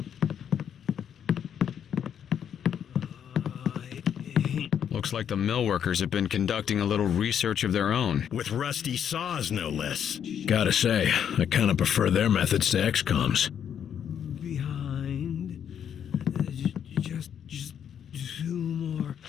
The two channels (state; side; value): quieter; right; 8.7 dB